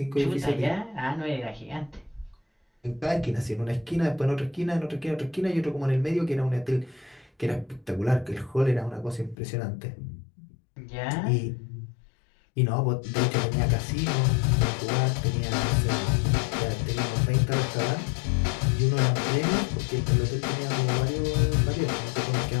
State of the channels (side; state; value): right; drops out; at 9.3 s